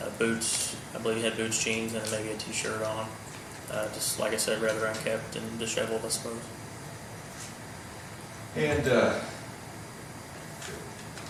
Boots, I believe he had boots, jeans, and maybe a t-shirt on. Just like I said, rather unkept and disheveled, I suppose. And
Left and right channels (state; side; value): identical; both; correlation 1.00